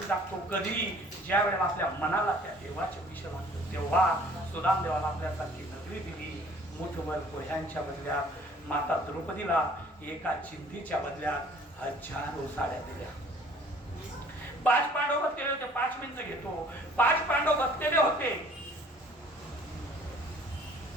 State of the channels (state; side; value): normal; both; correlation 0.54